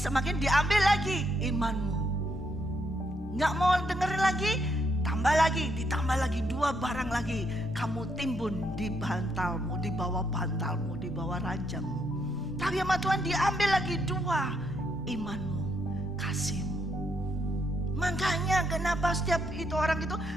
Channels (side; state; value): both; normal; correlation 0.75